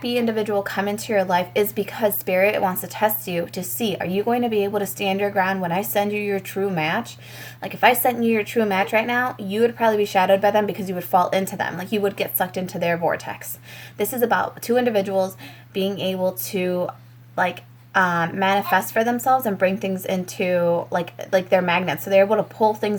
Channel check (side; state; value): both; identical; correlation 1.00